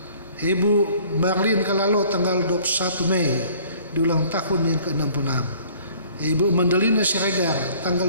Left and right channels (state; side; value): inverted; both; correlation -0.54